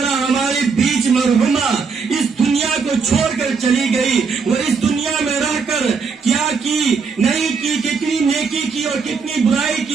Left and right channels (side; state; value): left; quieter; 5.2 dB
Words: ہمارے بیچ مرحومہ اس دنیا کو چھوڑ کر چلی گئی، وہ اس دنیا میں رہ کر کیا کی نہیں کی، کتنی نیکی کی اور کتنی برائی